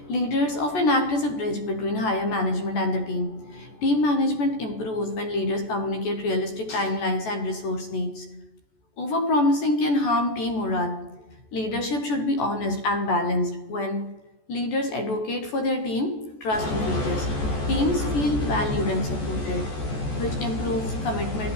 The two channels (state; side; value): late; right; 14 ms